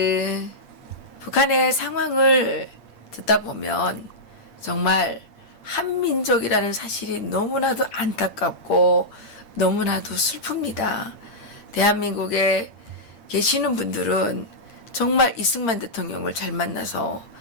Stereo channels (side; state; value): right; late; 8.7 ms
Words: 북한의 상황을 듣다 보면 정말 한민족이라는 사실이 너무나도 안타깝고 너무나도 슬픕니다. 대한민국에 계시는 분들은 정말 이승만 대통령을 잘 만나서